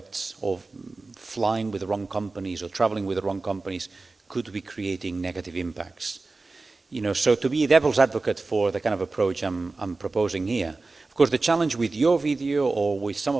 of flying with the wrong companies or traveling with the wrong companies could be creating negative impacts. So to be a devil's advocate for the kind of approach I'm proposing here. Of course, the challenge with your video or with some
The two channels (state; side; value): quieter; left; 3.6 dB